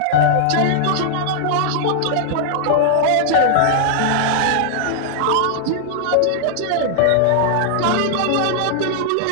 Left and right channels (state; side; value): different; both; correlation -0.01